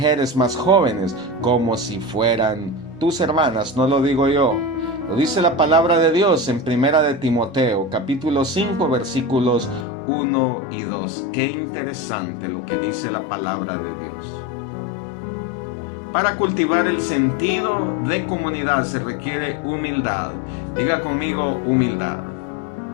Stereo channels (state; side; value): drops out; right; at 9.9 s